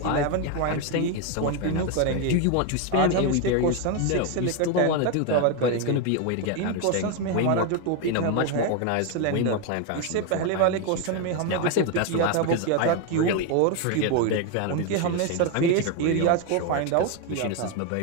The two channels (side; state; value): both; different; correlation 0.02